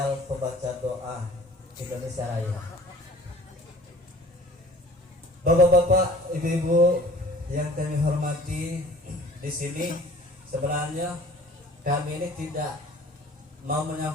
Pembaca Doa Indonesia Raya. Bapak-bapak, ibu-ibu yang kami hormati, di sini sebenarnya kami ini tidak mau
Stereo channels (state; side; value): normal; both; correlation 0.48